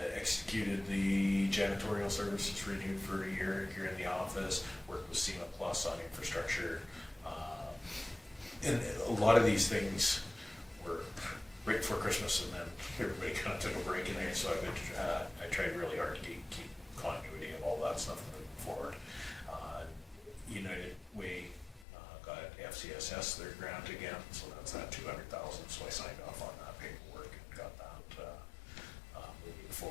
Executed the janitorial services renewed for a year here in the office, worked with SEMA Plus on infrastructure. And a lot of these things were right before Christmas and then everybody kind of took a break in there, so I've been, I tried really hard to keep continuity of all that stuff moving forward. United Way got FCSS their grant again, so that's that $200,000, so I signed off on that paperwork and got that moving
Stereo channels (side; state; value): right; drops out; at 21.9 s